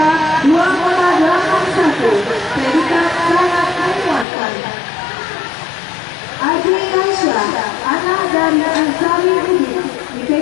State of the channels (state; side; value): drops out; right; at 4.2 s